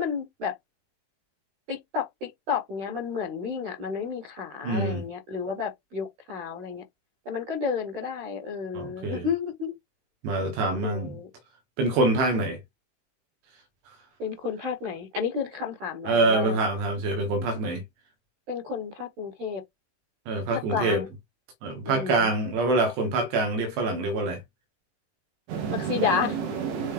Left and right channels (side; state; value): left; late; 16 ms